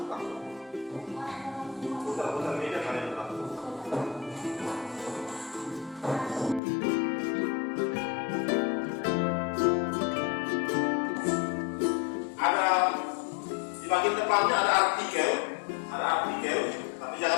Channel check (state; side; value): drops out; right; at 6.6 s